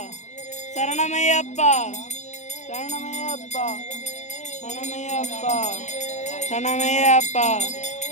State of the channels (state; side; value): late; right; 0.34 ms